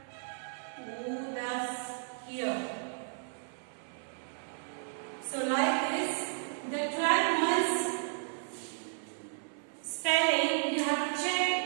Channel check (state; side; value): silent; left; 55 dB below the other